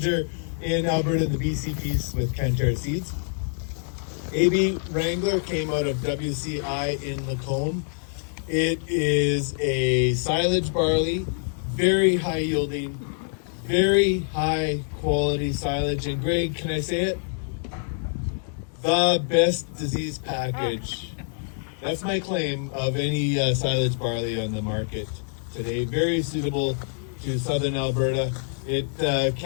in Alberta, the BC piece with Canterra Seeds. AB Wrangler came out of WCI in Lacombe. It is a silage barley, very high yielding, very high quality silage. And Greg, can I say it? The best disease package. That's my claim of any silage barley on the market today. Very suitable to southern Alberta. It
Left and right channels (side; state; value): right; silent; digital silence